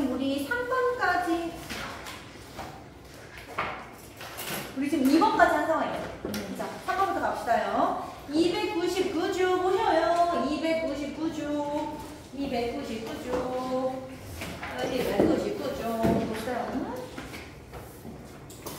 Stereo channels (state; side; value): identical; both; correlation 1.00